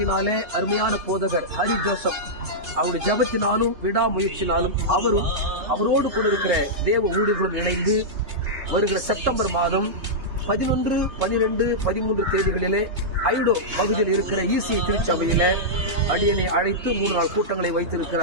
அருமையான போதகர் ஹரி ஜோசப் அவருடைய ஜபத்தினாலும் விடாமுயற்சினாலும் அவரோடு கூட இருக்கிற தேவ ஊழியர்களும் இணைந்து வருகிற செப்டம்பர் மாதம் 11, 12, 13 தேதிகளிலே ஐடோ பகுதியில் இருக்கிற ஈசிஐ திருச்சபையில அடியனை அழைத்து 3 நாள் கூட்டங்களை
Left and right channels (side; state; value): left; late; 3.2 ms